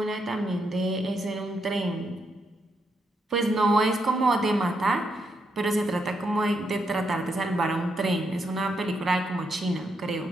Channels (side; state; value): both; normal; correlation 0.80